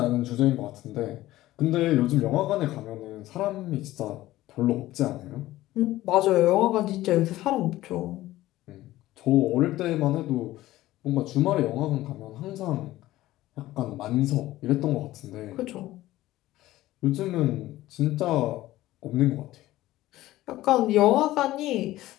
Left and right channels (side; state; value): right; quieter; 16.1 dB